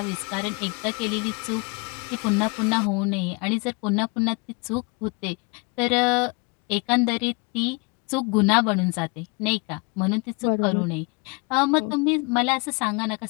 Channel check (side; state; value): right; quieter; 30.9 dB